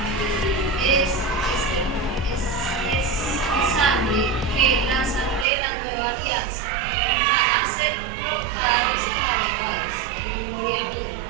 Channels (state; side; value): drops out; left; at 5.5 s